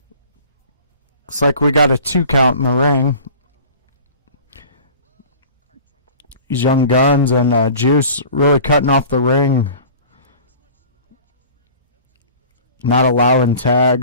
Looks like we got a 2 count in the ring. These Young Guns and Juice really cutting off the ring. Not allowing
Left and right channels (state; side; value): inverted; both; correlation -0.43